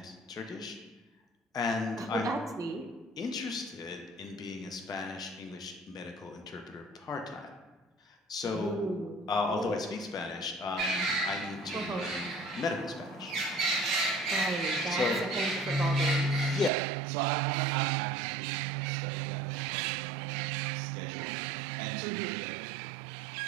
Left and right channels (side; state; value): left; drops out; at 16.7 s